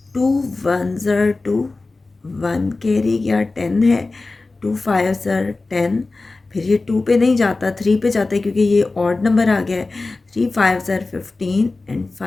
2 1s are 2, 1 carry गया 10 है, 2 5s are 10। फिर ये 2 पे नहीं जाता, 3 पे जाता है क्योंकि ये ऑड नंबर आ गया है। 3 5s are 15 and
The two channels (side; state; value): right; quieter; 3.4 dB